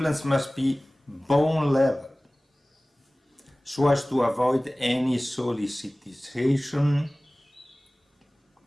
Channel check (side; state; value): both; normal; correlation 0.98